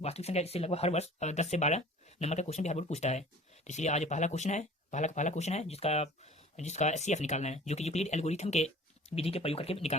संख्या इससे लगभग हर वर्ष 10 से 12 नंबर का क्वेश्चन भी हर बार पूछता है। तो इसलिए आज पहला क्वेश्चन है, पहला क्वेश्चन है जिसका जिसका एचसीएफ निकालना है, जो कि यूक्लिड एल्गोरिथम के विधि के प्रयोग करके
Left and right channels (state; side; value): normal; both; correlation 0.45